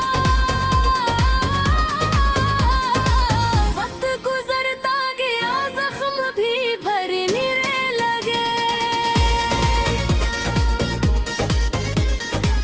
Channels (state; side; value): identical; both; correlation 1.00